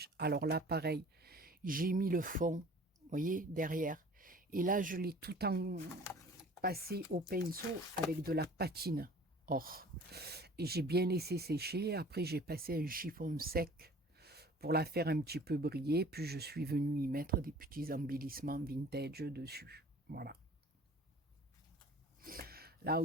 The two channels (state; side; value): normal; both; correlation 0.48